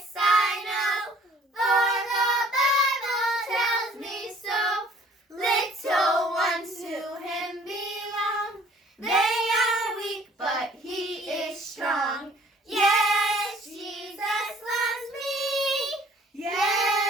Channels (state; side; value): normal; both; correlation 0.55